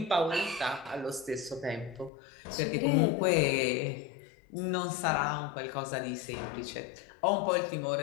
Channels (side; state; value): right; drops out; at 2.1 s